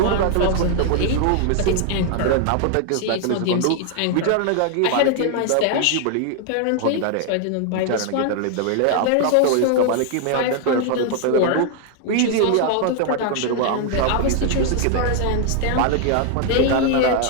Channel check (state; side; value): different; both; correlation 0.00